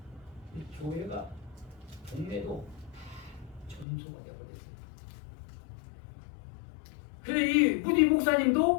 교회가 동네도 전소가 되어버렸어요. 근데 이 우리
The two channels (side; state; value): right; drops out; at 3.9 s